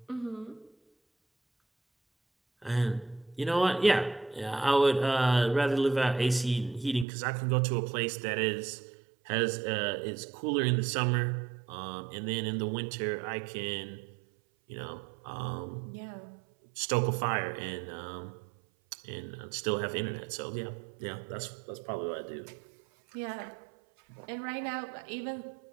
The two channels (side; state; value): left; drops out; at 7.1 s